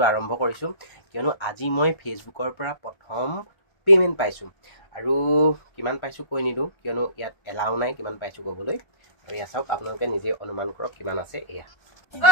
আৰম্ভ কৰিছোঁ কিয়নো আজি মই ফেচবুকৰ পৰা প্ৰথম পে'মেণ্ট পাইছোঁ আৰু কিমান পাইছোঁ কৈ নিদিওঁ কিয়নো ইয়াত এলাও নাই কিমান পাইছোঁ ক'বলৈ। আৰু এয়া চাওক, আপোনালোকে নিজে অনুমান কৰক কিমান আছে। এয়া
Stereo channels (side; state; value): right; late; 1.4 ms